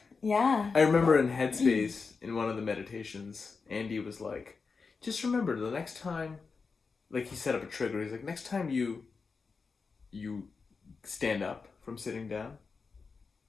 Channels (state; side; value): quieter; right; 4.8 dB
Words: Yeah. I remember in Headspace, in one of the meditations, Andy was like, just remember the next time, like he set up a trigger. He's like, next time you stand up from sitting down,